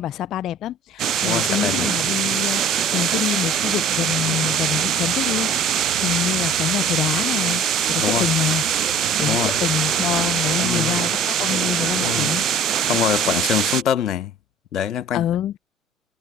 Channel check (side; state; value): both; normal; correlation 0.49